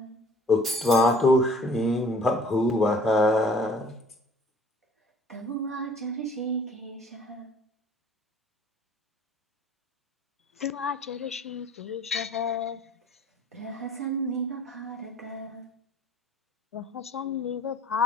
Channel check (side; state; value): both; normal; correlation 0.52